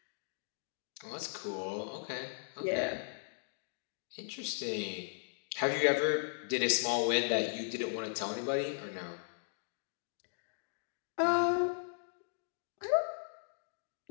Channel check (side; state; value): right; silent; digital silence